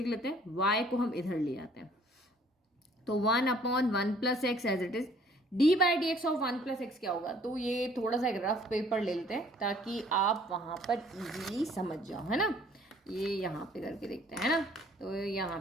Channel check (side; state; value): both; normal; correlation 0.58